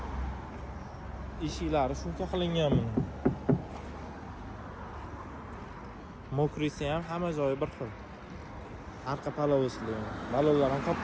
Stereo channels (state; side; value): identical; both; correlation 1.00